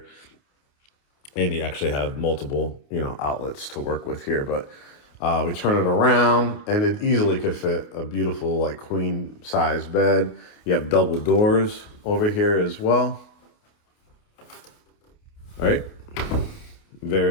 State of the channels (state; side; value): late; right; 28 ms